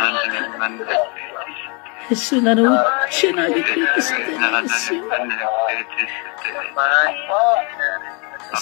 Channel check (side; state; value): right; quieter; 32.6 dB